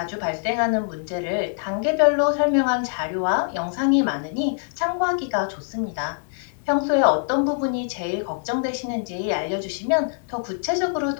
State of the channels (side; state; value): right; silent; 63 dB below the other